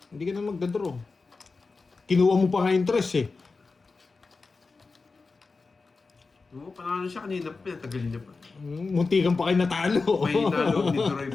Hindi ka na magdadraw. Kinuha mo pa nga interest eh. Oo, panalo siya kanina pa. Tagalin niya pa. Munti kang pa kayo natalo. May nalog ni Duroy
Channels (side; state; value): right; quieter; 4.1 dB